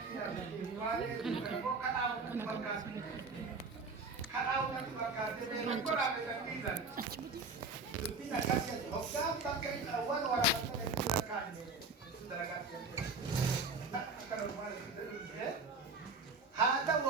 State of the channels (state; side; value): quieter; left; 3.8 dB